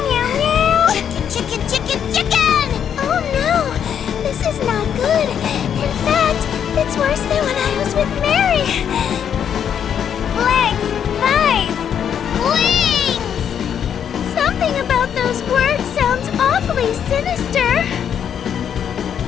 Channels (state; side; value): quieter; right; 8.6 dB